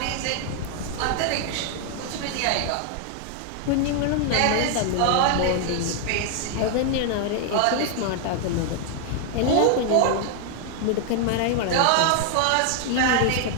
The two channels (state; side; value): different; both; correlation 0.00